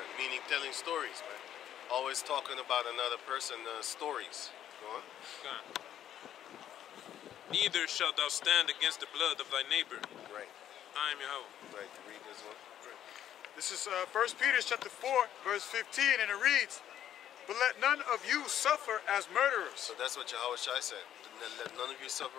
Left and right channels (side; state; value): right; quieter; 10.8 dB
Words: meaning telling stories, man. Always talking about another person's stories. Go on. God. Neither shalt thou stand against the blood of thy neighbor. Right. I am Yahweh. Right. Read this one. This is 1 Peter chapter 4, verse 15, and it reads, "But let none of you suffer as murderers, So that's what Yahushua said. Let none of you